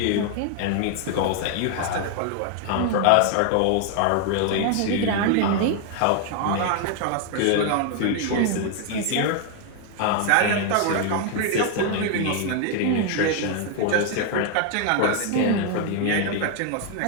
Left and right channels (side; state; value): both; different; correlation 0.00